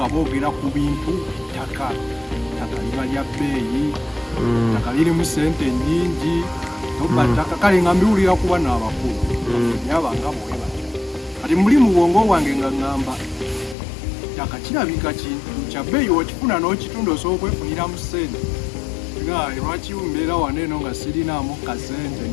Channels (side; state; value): right; drops out; at 13.8 s